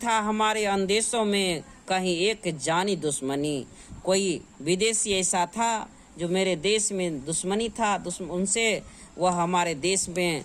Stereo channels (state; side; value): identical; both; correlation 1.00